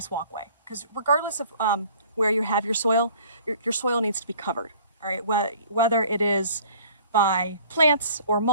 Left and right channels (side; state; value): both; inverted; correlation -0.52